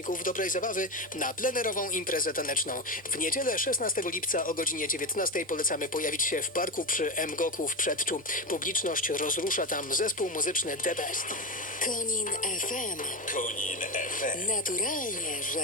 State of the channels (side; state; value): both; normal; correlation 0.16